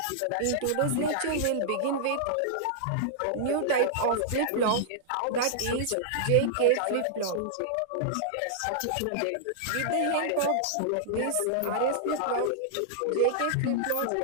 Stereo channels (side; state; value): both; different; correlation -0.01